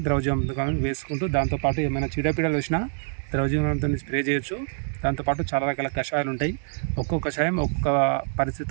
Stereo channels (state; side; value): silent; left; 61 dB below the other